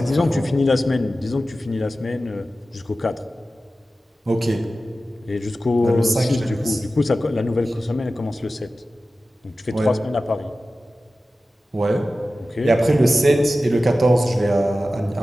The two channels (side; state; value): both; normal; correlation 0.95